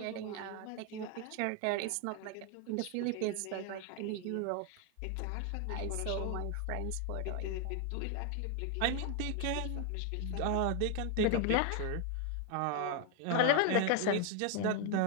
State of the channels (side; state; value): both; different; correlation 0.00